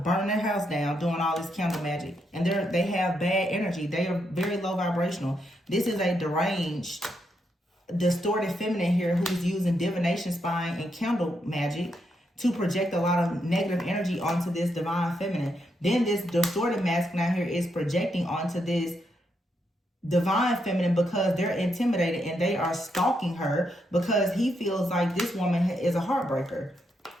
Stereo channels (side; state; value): both; normal; correlation 0.80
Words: their house down doing all this candle magic. And they have bad energy. They are very low vibrational. This is a deranged, distorted feminine here who's using divination spying and candle magic to project a lot of negative energy onto this divine feminine. Then this distorted masculine out here is projecting onto this divine feminine because they're intimidated and they are stalking her because he feels like this woman is a heartbreaker.